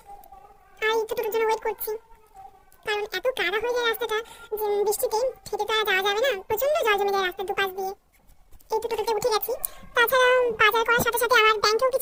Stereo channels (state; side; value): identical; both; correlation 1.00